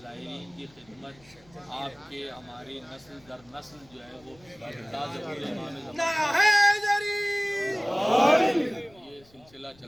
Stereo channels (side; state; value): left; noise; rumble, 28 dB below the sound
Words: زائرین کی خدمت آپ کے ہماری نسل در نسل جو ہے وہ یہ سلسلہ